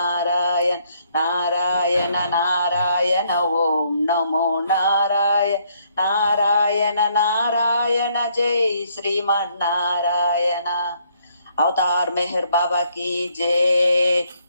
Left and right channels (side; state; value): both; inverted; correlation -0.69